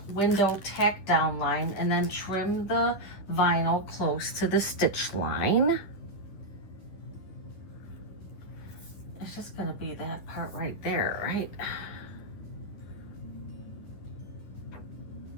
window tack down line, and then trim the vinyl close to the stitch line. It's just going to be that part right there, right?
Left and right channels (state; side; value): late; right; 10 ms